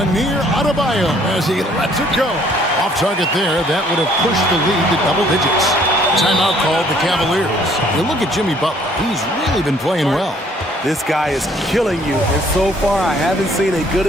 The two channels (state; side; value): normal; both; correlation 0.61